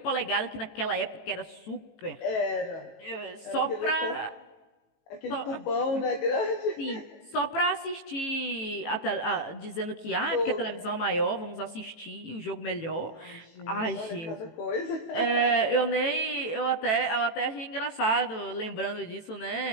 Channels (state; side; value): late; right; 18 ms